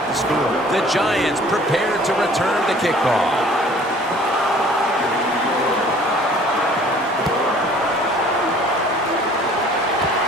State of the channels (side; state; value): both; normal; correlation 0.52